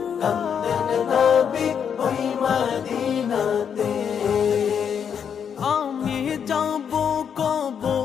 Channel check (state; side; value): quieter; right; 7.6 dB